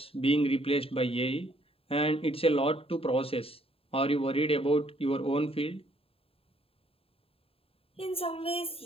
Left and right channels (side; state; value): right; late; 0.27 ms